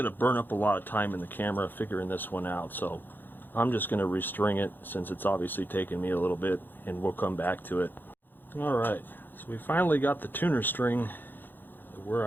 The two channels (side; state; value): right; late; 0.093 ms